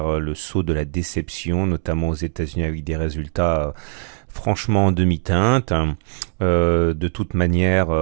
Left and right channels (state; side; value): silent; left; 65 dB below the other